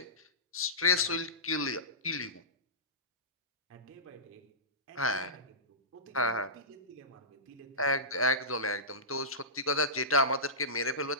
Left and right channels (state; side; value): normal; both; correlation -0.20